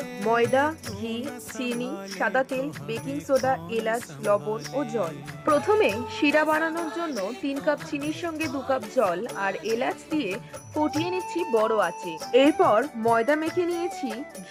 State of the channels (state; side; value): identical; both; correlation 1.00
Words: ময়দা, ঘি, চিনি, সাদা তেল, বেকিং সোডা, এলাচ, লবণ ও জল। প্রথমে শিরা বানানোর জন্য 3 কাপ চিনির সঙ্গে 2 কাপ জল আর এলাচ দিয়ে ফুটিয়ে নিচ্ছি বড় আঁচে। এরপর ময়দা মেখে নিয়েছি